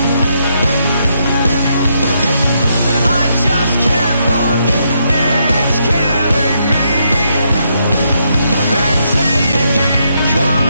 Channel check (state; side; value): inverted; both; correlation -0.77